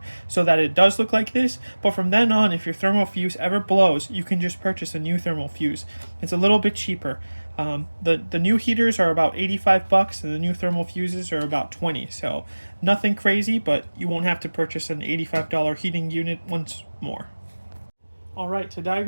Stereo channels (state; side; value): inverted; both; correlation -1.00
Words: so that it does look like this. But from then on, if your thermal fuse ever blows, you can just purchase a new thermal fuse. It's a little bit cheaper. The new heaters are about $85 and the new thermal fuses are about $20. So nothing crazy, but you won't have to purchase an $85 heating unit once more. Alright, to